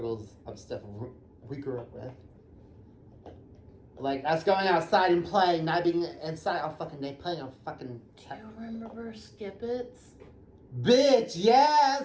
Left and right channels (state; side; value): identical; both; correlation 1.00